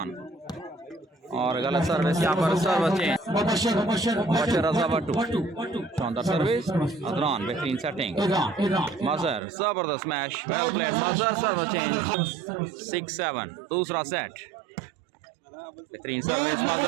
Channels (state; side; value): drops out; left; at 9.4 s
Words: और गलत सर्विस यहाँ पर सर्विस चेंज मुबशर रजा वाटू शानदार सर्विस अदनान बेहतरीन सेटिंग मजहर जबरदस्त smash well played Mazhar service change 6-7 दूसरा सेट बेहतरीन सर्विस